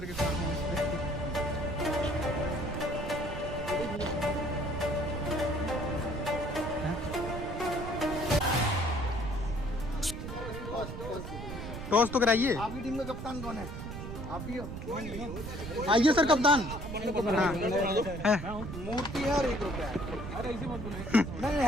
के साथ। टॉस तो कराइए। आपकी टीम का कप्तान कौन है? आप ही हो। आइए सर कप्तान। मूर्ति है और 1 रुपया है। अरे ऐसे मत बोलो।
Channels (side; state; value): right; noise; rumble, 8 dB below the sound